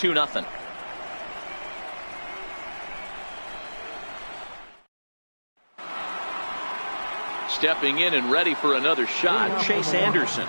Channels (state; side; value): inverted; both; correlation -1.00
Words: stepping in and ready for another shot. Chase Anderson